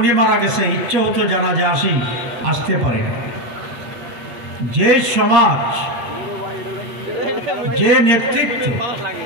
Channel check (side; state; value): left; late; 8.6 ms